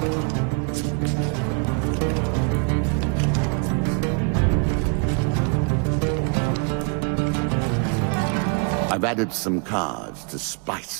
I've added some cards to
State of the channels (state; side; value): quieter; left; 35.8 dB